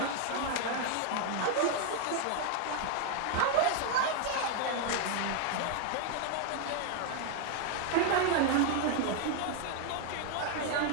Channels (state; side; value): different; both; correlation 0.00